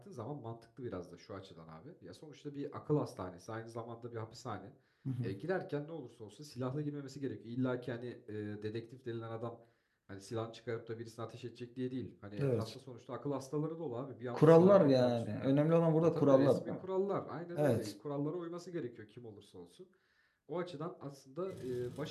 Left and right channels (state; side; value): identical; both; correlation 1.00